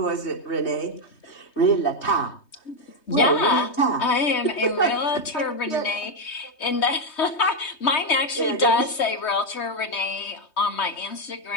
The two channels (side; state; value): right; late; 3.2 ms